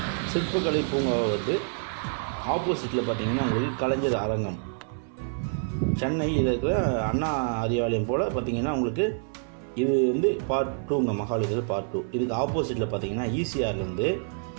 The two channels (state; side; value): silent; left; 55 dB below the other